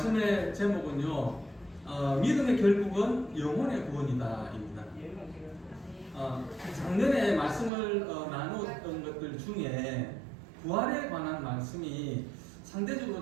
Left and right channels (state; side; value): drops out; left; at 7.7 s